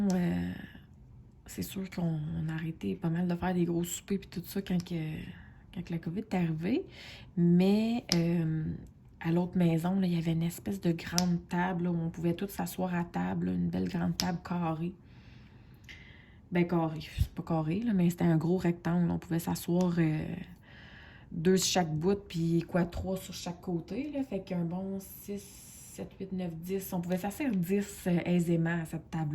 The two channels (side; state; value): both; identical; correlation 1.00